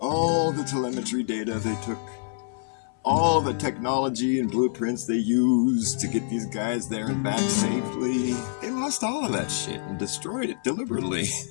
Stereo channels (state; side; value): silent; right; 56 dB below the other